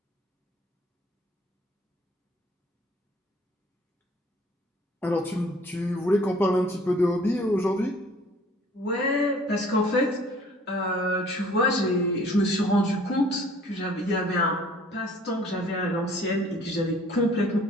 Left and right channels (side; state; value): both; normal; correlation 0.54